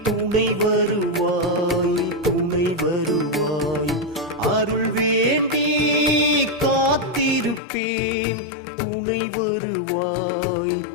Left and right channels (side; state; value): right; drops out; at 7.6 s